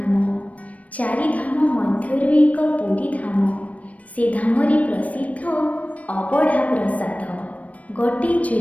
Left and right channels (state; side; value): late; right; 0.068 ms